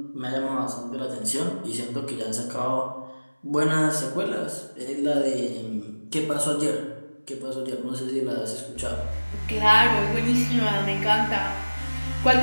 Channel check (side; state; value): both; inverted; correlation -1.00